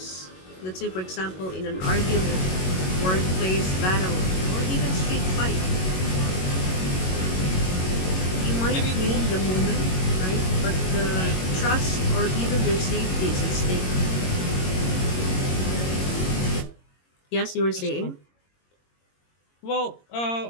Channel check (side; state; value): right; late; 22 ms